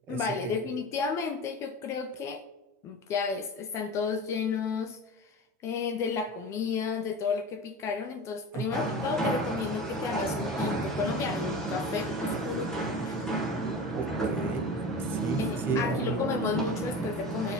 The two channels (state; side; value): normal; both; correlation 0.32